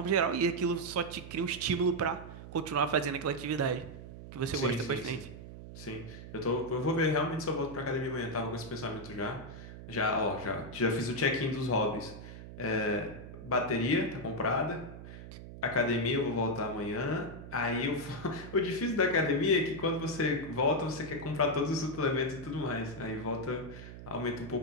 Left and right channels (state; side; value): noise; right; hum, 13 dB below the sound